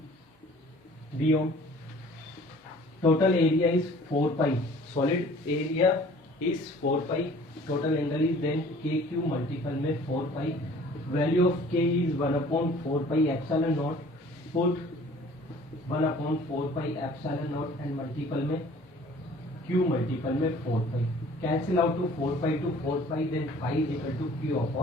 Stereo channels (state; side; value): normal; both; correlation 0.51